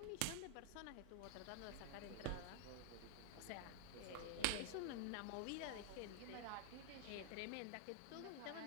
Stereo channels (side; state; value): both; different; correlation 0.00